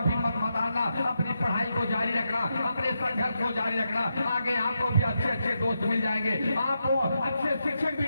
हिम्मत मत हारना, अपनी पढ़ाई को जारी रखना, अपने संघर्ष को जारी रखना। आगे आपको भी अच्छे अच्छे दोस्त मिल जाएंगे, आपको अच्छे शिक्षक भी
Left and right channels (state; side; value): inverted; both; correlation -0.85